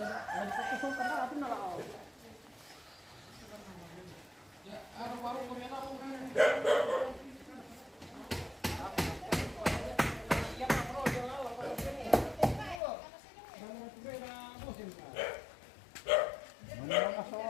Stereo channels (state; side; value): drops out; right; at 12.8 s